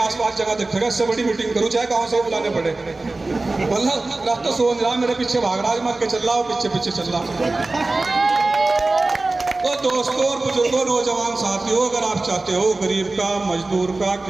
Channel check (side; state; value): left; quieter; 3.2 dB